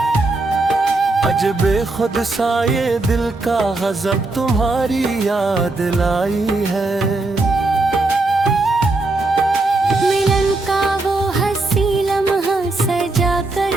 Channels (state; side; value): quieter; left; 3.1 dB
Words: अजबे खुद सा ये दिल का गजब तुम्हारी याद लाई है। मिलन का वो हंसी लम्हा सजा